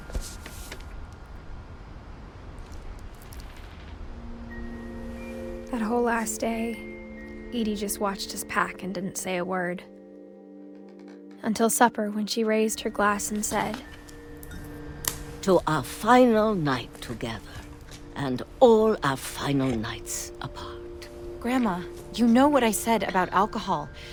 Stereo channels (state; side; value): identical; both; correlation 1.00